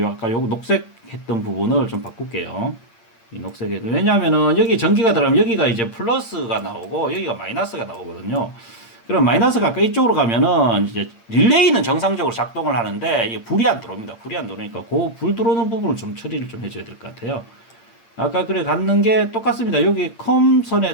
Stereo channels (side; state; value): right; late; 8.7 ms